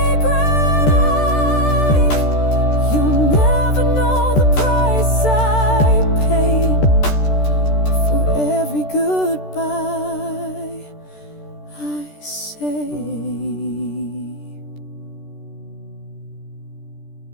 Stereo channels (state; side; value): late; right; 13 ms